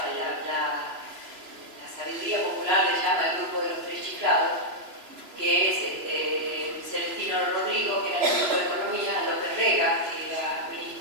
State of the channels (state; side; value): late; left; 3.0 ms